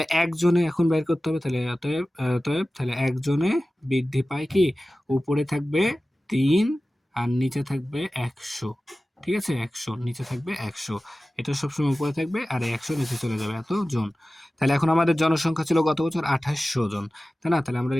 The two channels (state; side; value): normal; both; correlation 0.96